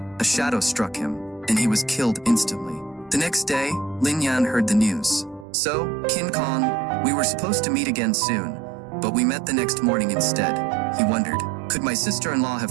a shadow struck him, and he was killed instantly. The next day, Lin Yan heard the news. So, King Kong, we were supposed to meet again soon, but we met the next morning instead. He wondered, could my sister-in-law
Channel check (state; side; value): drops out; left; at 5.5 s